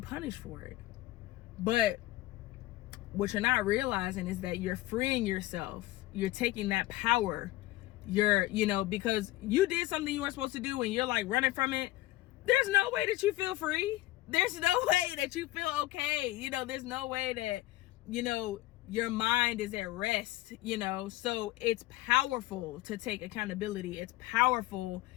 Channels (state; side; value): quieter; right; 17.3 dB